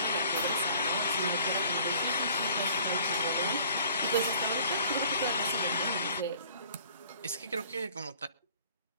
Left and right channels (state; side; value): inverted; both; correlation -0.53